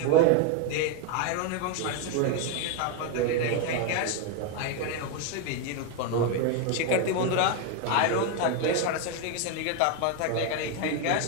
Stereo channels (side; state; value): both; different; correlation 0.02